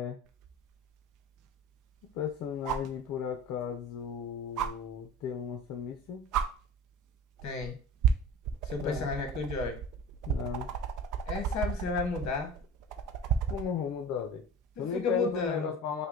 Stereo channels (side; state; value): both; normal; correlation 0.36